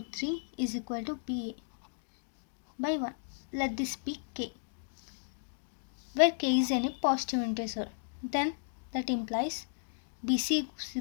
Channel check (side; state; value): right; silent; digital silence